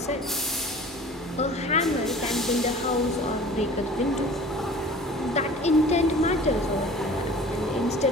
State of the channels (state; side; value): normal; both; correlation 0.44